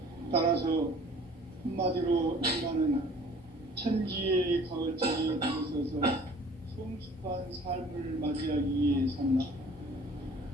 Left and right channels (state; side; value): normal; both; correlation 0.50